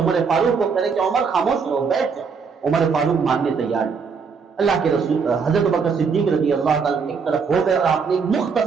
فاروق کو کہے کہ عمر خاموش رہو، بیٹھ جاؤ۔ عمر فاروق ماننے تیار نہیں۔ اللہ کے رسول حضرت ابوبکر صدیق رضی اللہ تعالیٰ ایک طرف ہو گئے اور آپ نے ایک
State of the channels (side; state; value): left; quieter; 5.6 dB